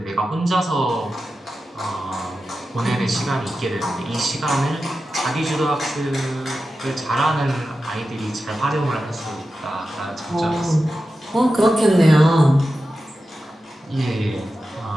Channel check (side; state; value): both; normal; correlation 0.92